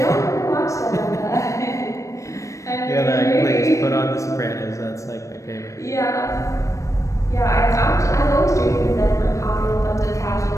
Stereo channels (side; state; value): right; late; 0.15 ms